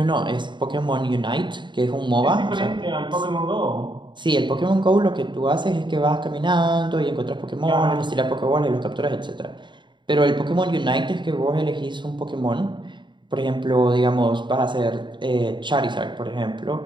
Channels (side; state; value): left; late; 0.23 ms